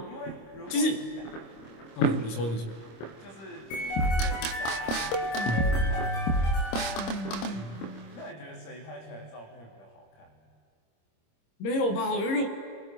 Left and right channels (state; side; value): late; right; 26 ms